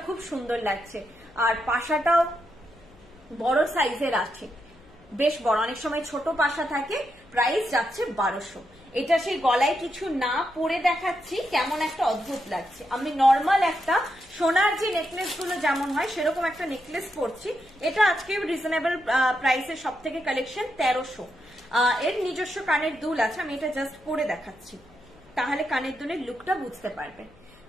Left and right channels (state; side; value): noise; left; hum, 27 dB below the sound